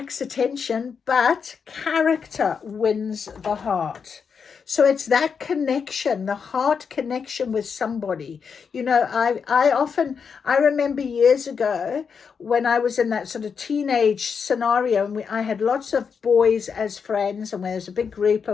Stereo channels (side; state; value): right; quieter; 6.2 dB